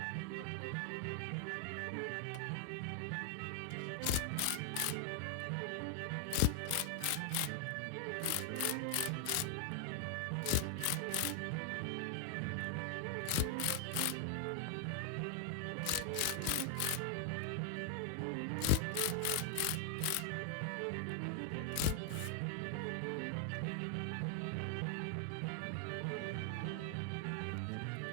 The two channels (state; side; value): different; both; correlation 0.00